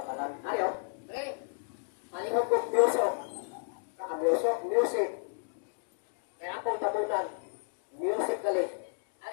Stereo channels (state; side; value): silent; right; digital silence